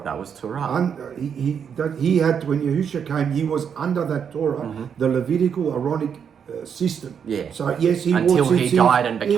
That was Torah. He had, when Yahushua came, he was under that Torah, the Levitical Aaronic system. Yeah. So yes, he Until wore he tzitzit, died and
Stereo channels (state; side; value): quieter; left; 7.4 dB